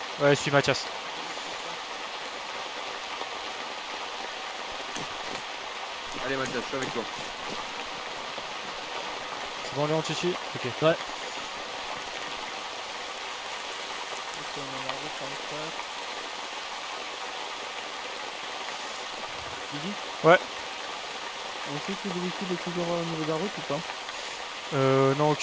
Ouais, je suis Mathias. Allez Mathias, je suis avec toi. C'est bon Léon, tu suis? Ok. Ouais. Ouais. On sait que le véhicule est toujours au niveau de la route ou pas? Non,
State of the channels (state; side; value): identical; both; correlation 1.00